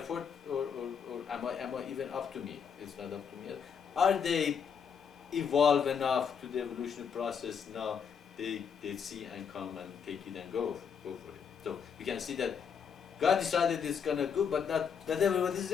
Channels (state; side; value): quieter; right; 6.9 dB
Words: or am I even up to me? It's not up to me. Are they evolved enough to the evolutionary process now? They see and come and take it and go for it. So we can see that God decided it's gonna go, but not everybody is